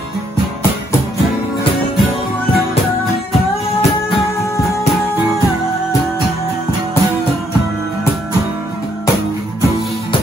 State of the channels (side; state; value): both; normal; correlation 0.71